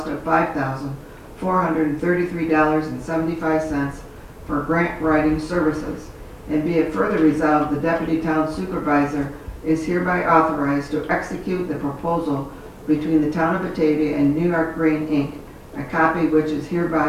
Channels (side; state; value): both; identical; correlation 1.00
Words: of $5,433.75 for grant writing services. And be it further resolved, the Deputy Town Supervisor is hereby authorized to execute the proposal between the Town of Batavia and New York Green, Inc., a copy which is